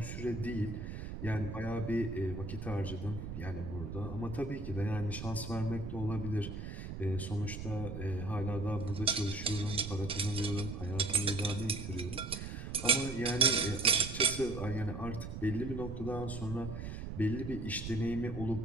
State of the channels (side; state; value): right; noise; rumble, 7 dB below the sound